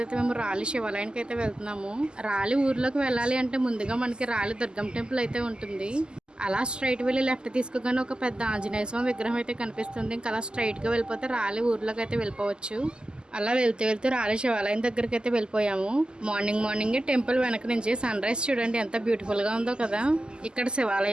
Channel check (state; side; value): late; left; 0.047 ms